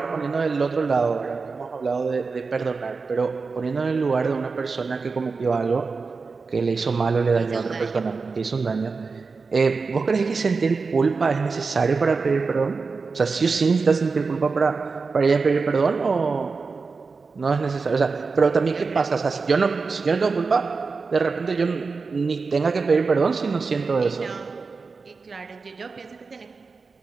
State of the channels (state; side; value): quieter; left; 4.5 dB